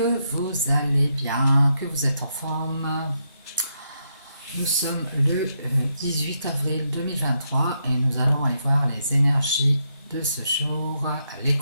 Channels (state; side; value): inverted; both; correlation -0.80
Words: vous allez bien, que vous êtes en forme. Nous sommes le 18 avril 2023 et nous allons aller voir les énergies de ce jour, les